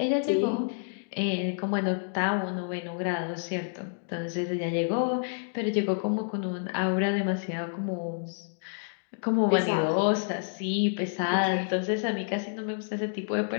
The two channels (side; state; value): right; silent; digital silence